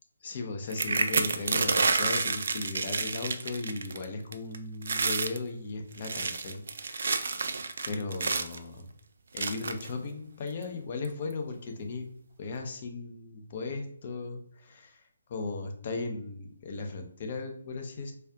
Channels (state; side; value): inverted; both; correlation -0.78